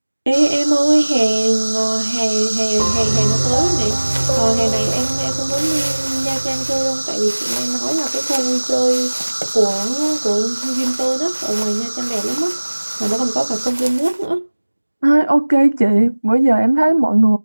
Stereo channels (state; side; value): inverted; both; correlation -1.00